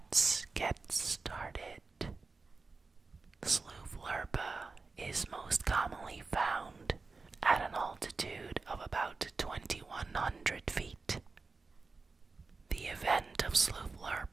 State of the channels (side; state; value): left; quieter; 4.0 dB